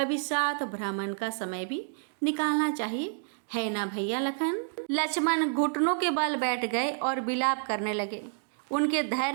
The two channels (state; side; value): silent; left; digital silence